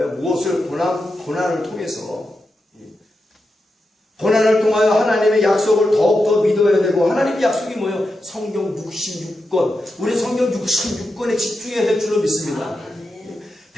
무엇을 고난을 통해서 고난을 통하여 하나님의 약속을 더욱더 믿어야 되고, 하나님의 약속이 뭐예요? 성경 66권. 우리 성경 66권에 집중해야 될 줄로 믿습니다.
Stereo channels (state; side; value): normal; both; correlation 0.88